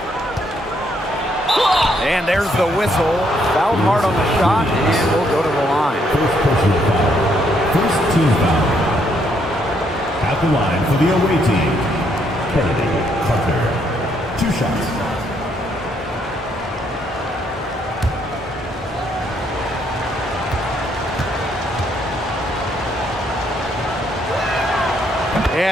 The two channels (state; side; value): normal; both; correlation 0.72